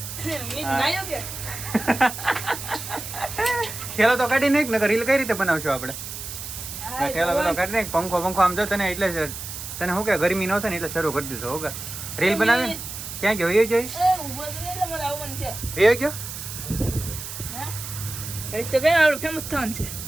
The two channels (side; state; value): right; noise; hiss, 9 dB below the sound